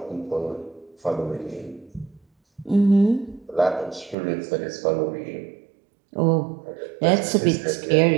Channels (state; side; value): drops out; left; at 4.2 s